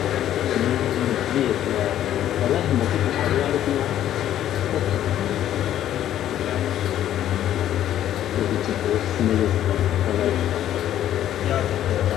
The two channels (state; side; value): quieter; right; 11.6 dB